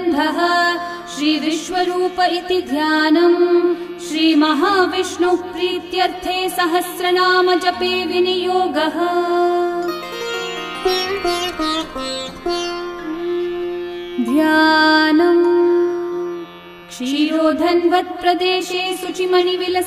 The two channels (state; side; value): identical; both; correlation 1.00